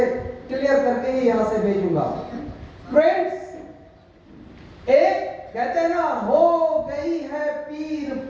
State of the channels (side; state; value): both; identical; correlation 1.00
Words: क्लियर करके ही यहां से भेजूंगा। फ्रेंड्स, एक कहते हैं ना, हो गई है पीर